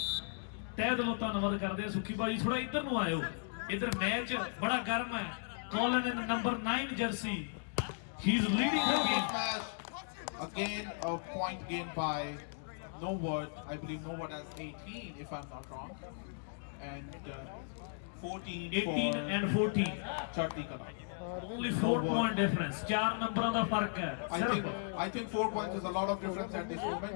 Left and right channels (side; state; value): right; silent; digital silence